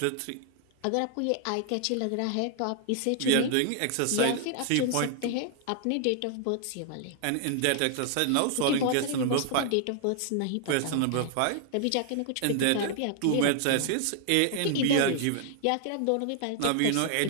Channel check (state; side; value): different; both; correlation 0.00